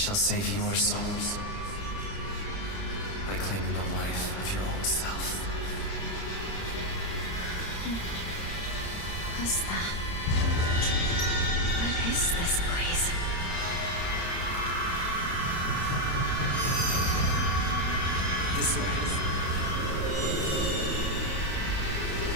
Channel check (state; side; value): late; right; 30 ms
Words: save your souls by claiming the life of your own self. Who was that? What is this place? This way.